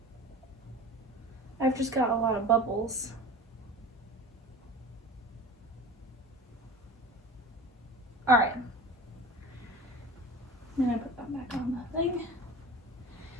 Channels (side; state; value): both; normal; correlation 0.36